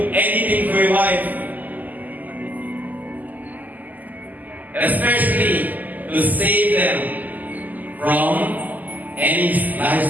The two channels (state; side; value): late; left; 0.082 ms